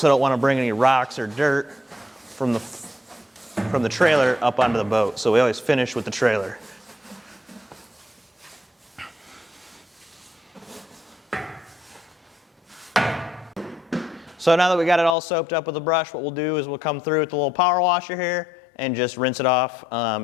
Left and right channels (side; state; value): right; drops out; at 15.2 s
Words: don't want to bring any rocks or dirt from the trailer up onto the boat. So we always finish with the trailer. So now that we got it all soaked up with the brush, what we'll do is we'll come through with the little power washer here and just rinse it off